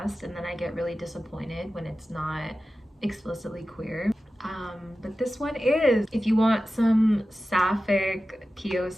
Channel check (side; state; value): both; normal; correlation 0.94